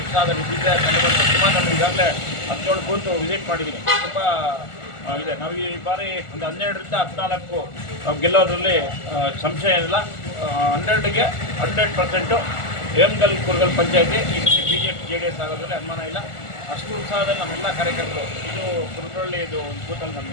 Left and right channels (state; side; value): late; right; 1.4 ms